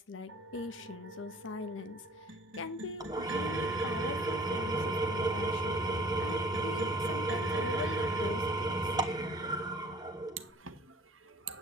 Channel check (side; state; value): both; normal; correlation 0.50